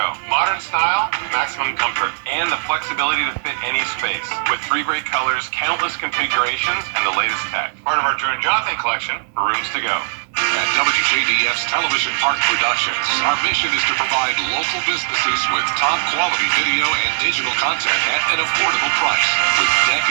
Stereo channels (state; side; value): silent; left; digital silence